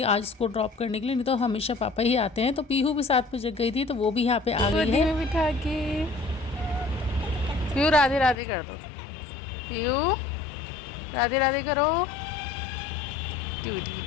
आज इसको ड्रॉप करने के लिए, नहीं तो हमेशा पापा ही आते हैं। तो पीहू भी साथ में जग गई थी, तो वो भी यहाँ पर आ गई है। बिठा के पीहू राधे राधे कर दो। पीहू राधे राधे करो। डूडी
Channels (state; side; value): drops out; right; at 8.3 s